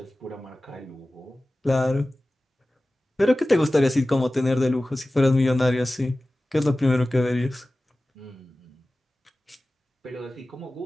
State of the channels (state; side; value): normal; both; correlation 0.97